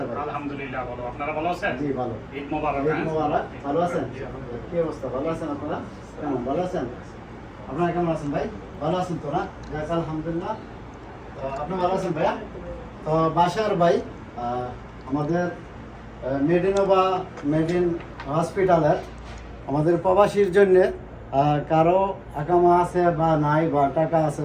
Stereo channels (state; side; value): identical; both; correlation 1.00